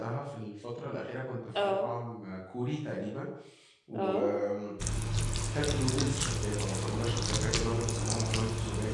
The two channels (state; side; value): identical; both; correlation 1.00